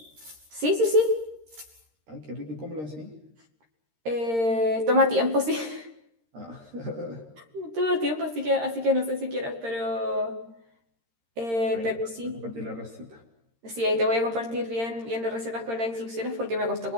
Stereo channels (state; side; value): late; left; 13 ms